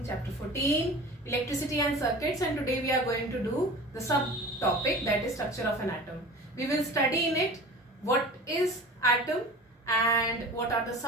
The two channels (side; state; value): both; normal; correlation 0.37